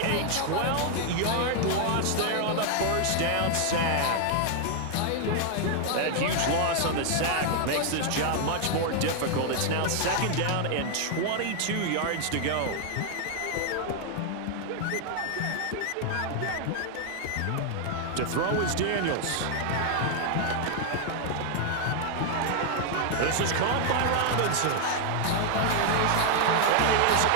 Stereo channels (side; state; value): both; different; correlation 0.00